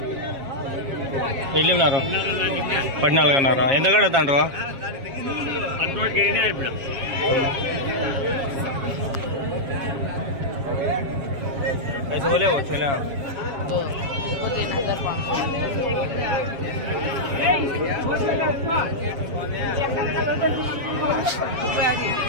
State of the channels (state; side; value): late; left; 7.3 ms